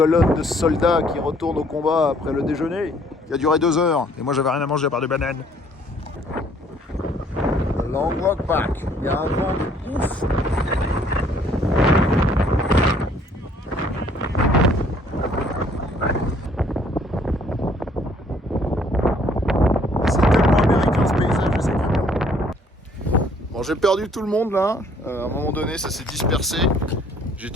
de soldats qui retournent au combat après le déjeuner. Il a duré 2 heures et moi j'avais rien à manger à part des bananes. Long walk back. Il y a un vent de ouf. C'est tellement américain ce paysage, je sais pas. Bon, j'ai perdu tout le monde là. À un moment donné, ça s'est dispersé. J'ai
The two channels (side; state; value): both; normal; correlation 0.61